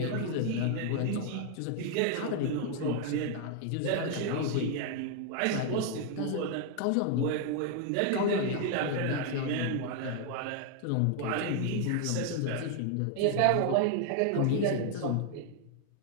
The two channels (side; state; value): both; different; correlation 0.00